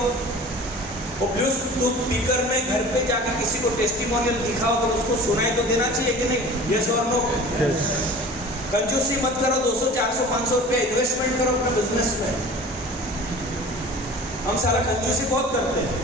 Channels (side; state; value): both; normal; correlation 0.41